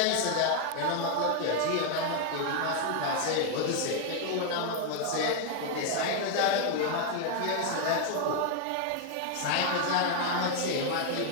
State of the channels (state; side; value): different; both; correlation 0.00